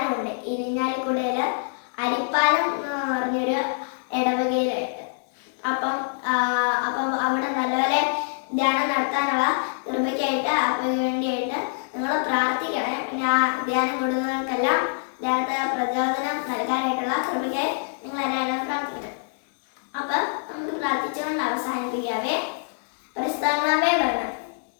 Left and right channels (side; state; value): right; silent; 62 dB below the other